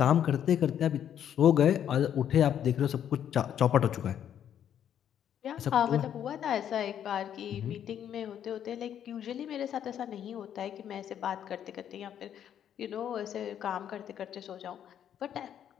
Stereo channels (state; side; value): quieter; right; 9.7 dB